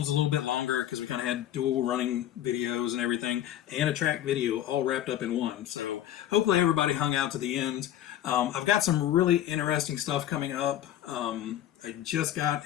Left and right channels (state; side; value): quieter; right; 11.9 dB